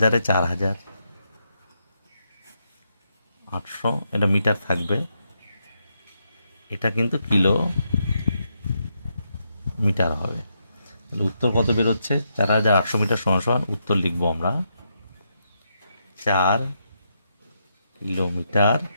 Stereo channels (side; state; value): both; inverted; correlation -0.81